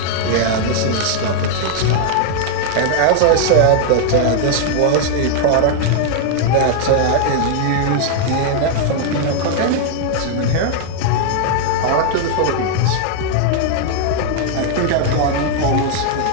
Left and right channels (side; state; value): both; different; correlation -0.01